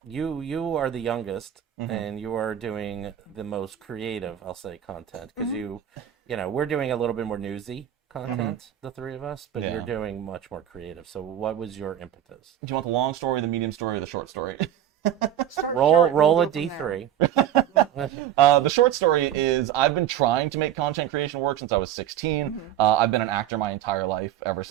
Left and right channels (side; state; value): left; quieter; 10.8 dB